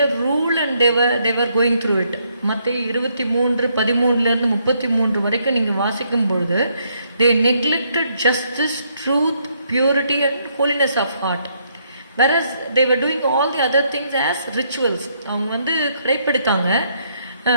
rule and they were going through it. மத்தேயு 23:13-33 வரைக்கும் நீங்கள் வாசிக்கும் பொழுது they neglected justice, truth, purity and holiness of heart, whereas they were doing all the other things as rituals. அவங்க கடைப்பிடித்தாங்க.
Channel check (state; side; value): inverted; both; correlation -0.73